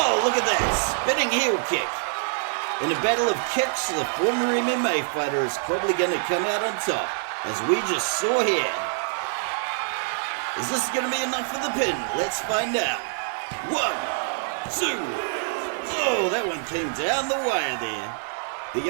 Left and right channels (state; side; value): silent; left; digital silence